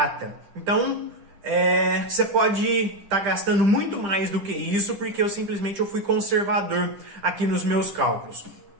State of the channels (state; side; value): late; left; 10 ms